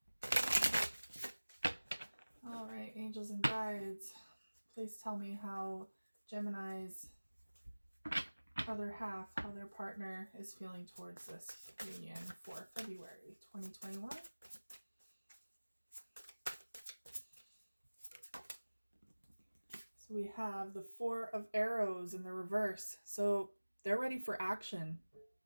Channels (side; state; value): both; inverted; correlation -1.00